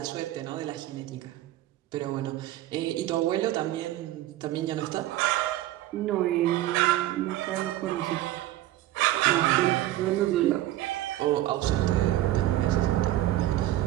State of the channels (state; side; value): quieter; left; 14.8 dB